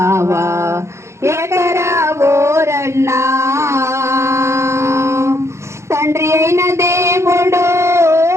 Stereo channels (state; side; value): late; left; 0.13 ms